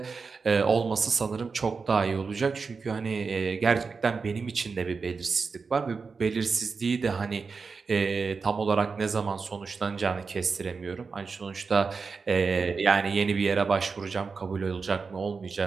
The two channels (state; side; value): quieter; left; 4.9 dB